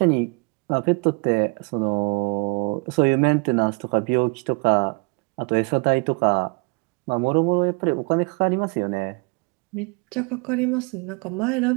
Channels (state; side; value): quieter; left; 31.3 dB